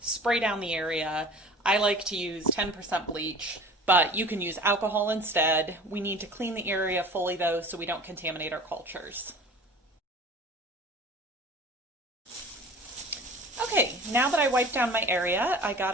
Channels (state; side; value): normal; both; correlation 0.41